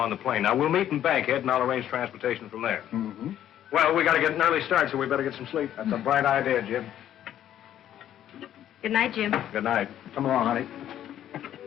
the plane. Now, we'll meet in Bankhead, and I'll arrange transportation from there. Mm-hmm. Well, we got to get an early start, so we better get some sleep. That's a bright idea, Jim. Good night, Jim. Good night. Come along, honey.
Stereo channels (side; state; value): right; quieter; 11.2 dB